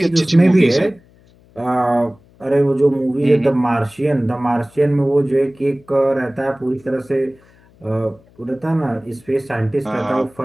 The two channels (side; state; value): left; noise; hum, 29 dB below the sound